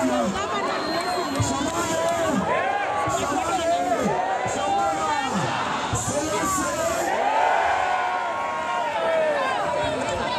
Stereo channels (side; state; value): both; identical; correlation 1.00